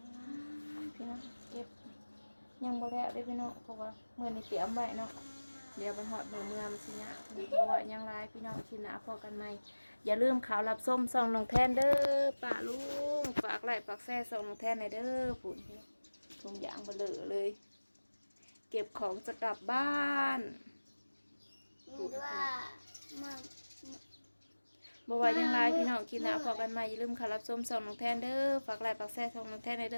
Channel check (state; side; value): inverted; both; correlation -1.00